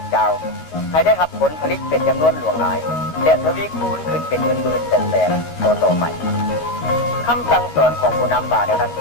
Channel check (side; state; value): right; late; 13 ms